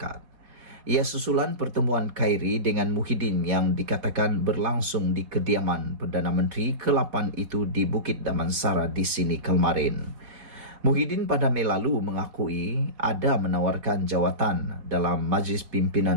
Ia susulan pertemuan Khairi dengan Muhyiddin yang dikatakan berlangsung di kediaman Perdana Menteri ke-8 itu di Bukit Damansara di sini kemarin. Muhyiddin pada Mei lalu mengakui ada menawarkan jawatan dalam Majlis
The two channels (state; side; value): late; left; 4.2 ms